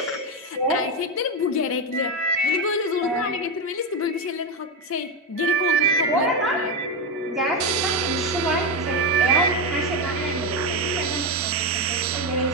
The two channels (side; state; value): both; normal; correlation 0.11